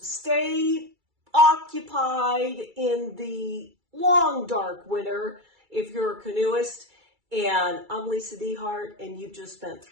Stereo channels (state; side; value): late; left; 2.3 ms